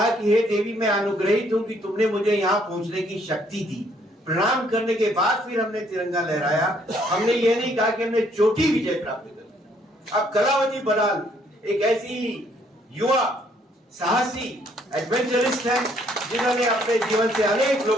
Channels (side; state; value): both; normal; correlation 0.67